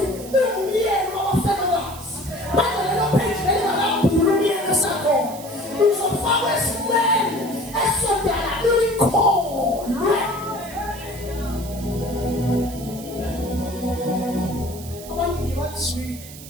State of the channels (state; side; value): noise; right; hiss, 15 dB below the sound